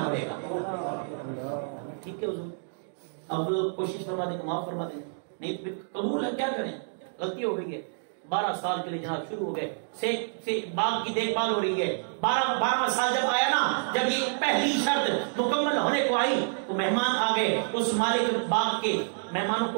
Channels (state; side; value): silent; left; digital silence